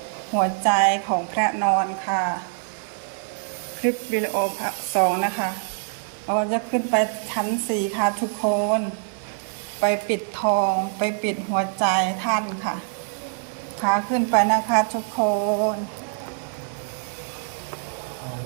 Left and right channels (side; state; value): left; silent; digital silence